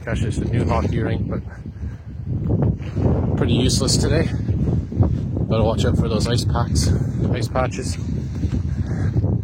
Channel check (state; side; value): identical; both; correlation 1.00